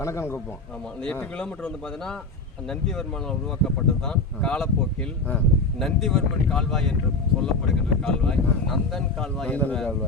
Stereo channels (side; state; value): right; quieter; 3.3 dB